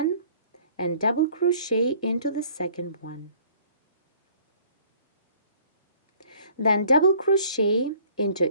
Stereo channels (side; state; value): both; inverted; correlation -0.56